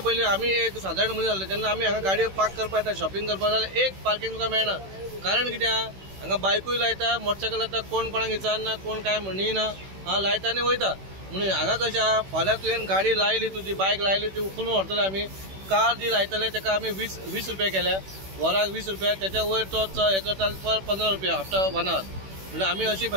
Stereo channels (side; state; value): left; late; 16 ms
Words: आमी एक सादारण मनीस जाल्ले जेन्ना आमी हांगा गाडयो पार्क करपाक येता, शॉपिंग करपाक जाल्यार एक पार्किंग तुका मेळना। कारण कित्या हांगा बायकूय लायता, मोटरसायकल लायता, कोण कोणाक विचारना, कोण काय म्हणिना, लायता आनी वयता। म्हणून हांगा कशें आहा, फाल्यां तुवें गाडी लायली, तुजी बायक लायली, ती उखलून व्हरतले आमी। कार जी लायतले ताका आमी 20 रुपया केल्या, वराक 20 रुपया, त्याच्या वयर तो हे करता पर 15 रुपया आफ्टर 1 आवर। म्हणजे आमी अशी